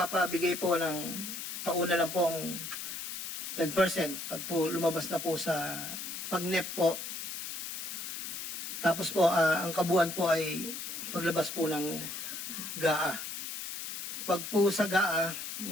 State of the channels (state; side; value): noise; left; hiss, 6 dB below the sound